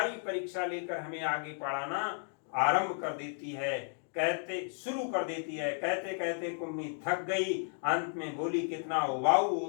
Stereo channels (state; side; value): silent; right; 55 dB below the other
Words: परीक्षा लेकर हमें आगे पढ़ाना आरंभ कर देती है, शुरू कर देती है। कहते कहते कुम्मी थक गई, अंत में बोली, कितना उबाऊ